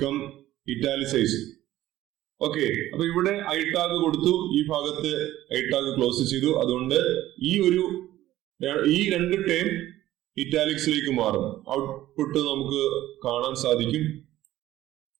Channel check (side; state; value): left; quieter; 14.6 dB